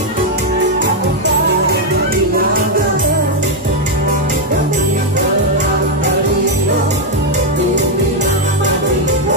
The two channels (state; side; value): normal; both; correlation 0.01